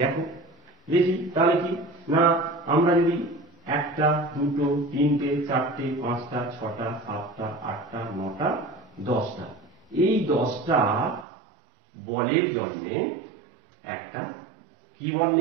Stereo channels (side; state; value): left; drops out; at 11.2 s